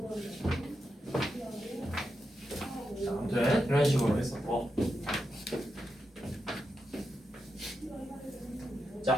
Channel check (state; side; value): normal; both; correlation 0.86